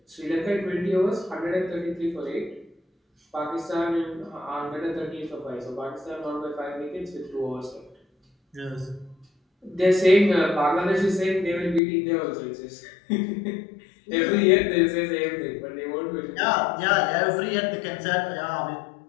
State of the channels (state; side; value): drops out; right; at 11.8 s